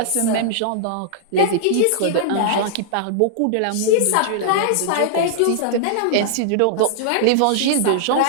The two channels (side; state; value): both; different; correlation -0.01